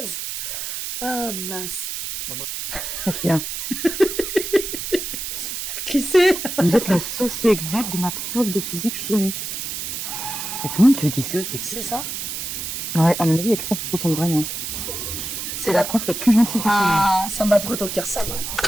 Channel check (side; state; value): right; noise; hiss, 5 dB below the sound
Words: Ah mince. Bien. Qui c'est? Vous êtes la sauce exacte de ma prof de physique chimie. Et tout le monde te dit ça, C'est ça? Ouais, à mon avis, il y a quelqu'un qui se ressemble vraiment. C'est la prof la plus gentille du monde. Ah, ça m'a trop au cœur, ça.